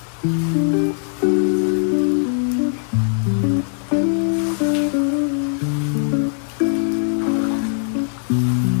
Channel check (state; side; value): silent; right; 66 dB below the other